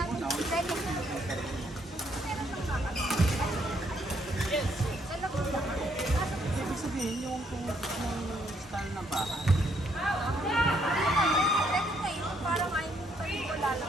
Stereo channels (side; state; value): both; normal; correlation 0.71